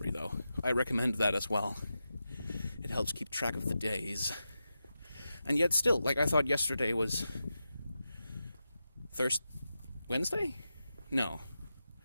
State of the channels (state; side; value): inverted; both; correlation -0.90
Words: though. I recommend that as well. It helps keep track of the days. And yet still, like, I thought yesterday was Wednesday? No.